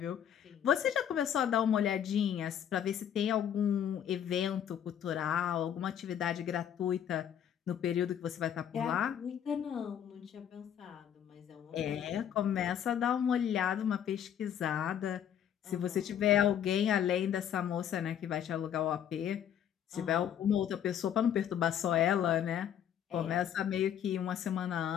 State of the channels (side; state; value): right; quieter; 9.5 dB